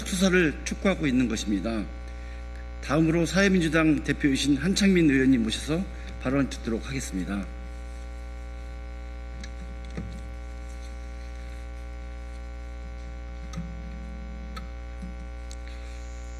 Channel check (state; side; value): identical; both; correlation 1.00